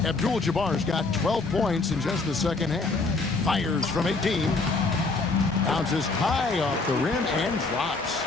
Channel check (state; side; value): quieter; right; 3.7 dB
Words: Abdul-Jabbar's got 12 points in just the second half. Fires from 18. Bounces high off the rim and drops.